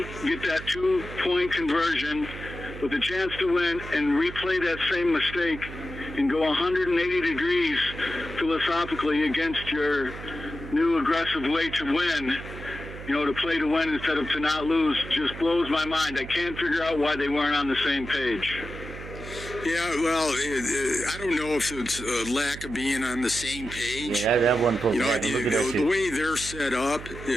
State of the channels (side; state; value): right; noise; hum, 12 dB below the sound